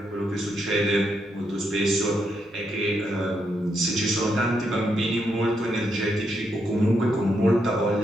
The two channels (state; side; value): normal; both; correlation 0.80